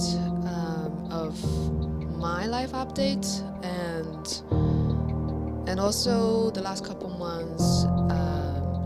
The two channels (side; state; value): both; identical; correlation 1.00